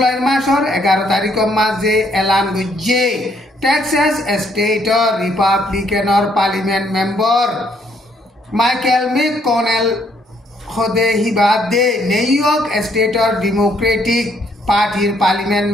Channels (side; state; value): both; normal; correlation 0.69